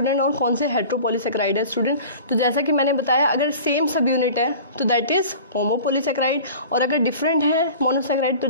और कौन से हेट्रोपॉलीसेक्राइड है स्टूडेंट। तो जैसा कि मैंने बताया, अगर सेम सब यूनिट है तो दैट इज होमोपॉलीसेक्राइड, और अगर डिफरेंट है मोनोसेक्राइड तो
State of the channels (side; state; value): both; inverted; correlation -0.40